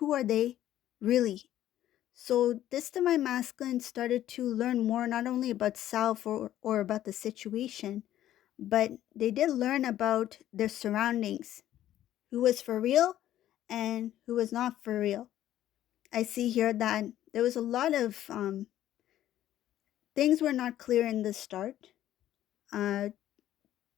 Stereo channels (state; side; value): quieter; right; 12.6 dB